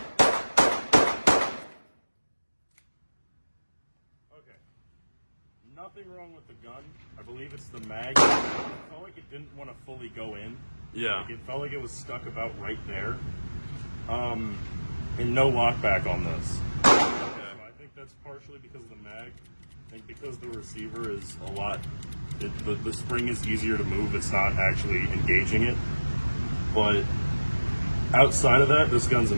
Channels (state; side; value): inverted; both; correlation -1.00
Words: Nothing wrong with the gun. I believe it's the mag. It felt like it didn't want to fully go in. Yeah. Like it felt like it was stuck about right there. And no lockback on this. Okay. So I think that's partially because of the mag. I think because the receiver is a lot, the spring is easier to move. It's not actually engaging it. But outside of that, this gun's